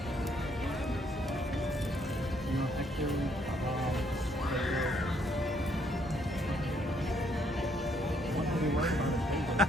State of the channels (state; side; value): normal; both; correlation 0.69